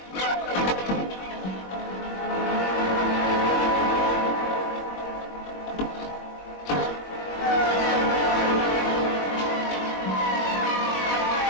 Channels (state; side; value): late; right; 21 ms